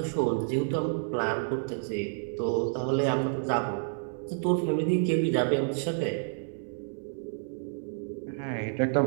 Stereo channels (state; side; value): silent; left; 58 dB below the other